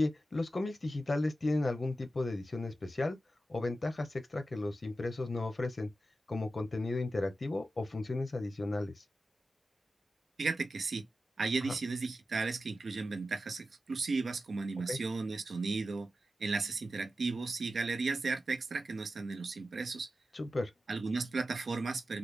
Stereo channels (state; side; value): normal; both; correlation 0.92